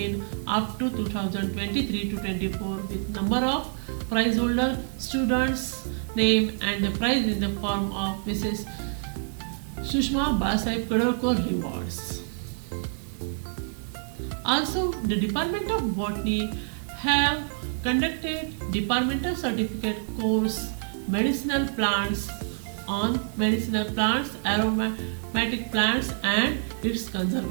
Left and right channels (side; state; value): left; silent; 60 dB below the other